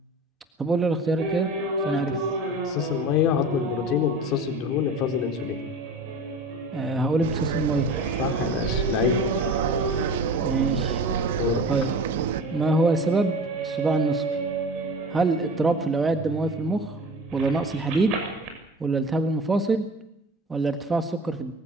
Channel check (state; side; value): normal; both; correlation 0.37